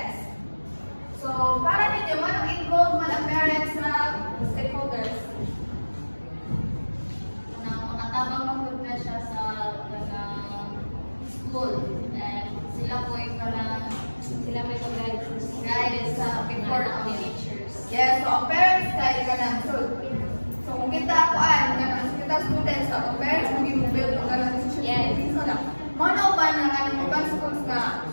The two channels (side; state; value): both; inverted; correlation -1.00